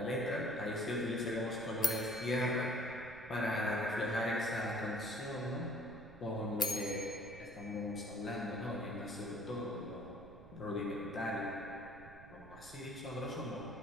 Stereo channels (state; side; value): noise; right; rumble, 18 dB below the sound